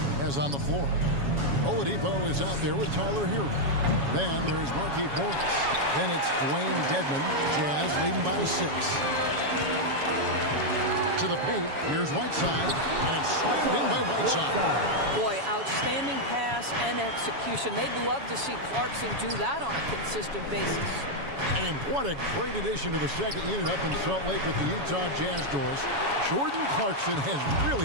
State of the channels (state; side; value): late; left; 7.2 ms